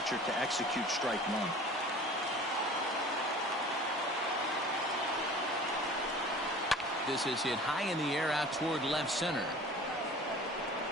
to execute strike 1. This is hit high in the air out toward left center.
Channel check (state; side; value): normal; both; correlation 0.43